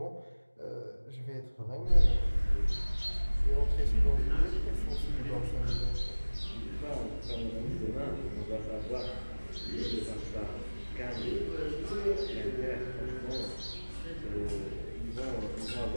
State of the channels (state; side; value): inverted; both; correlation -1.00